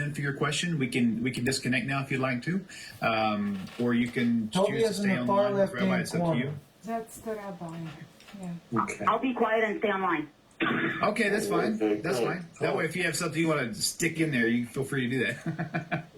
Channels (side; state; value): both; identical; correlation 1.00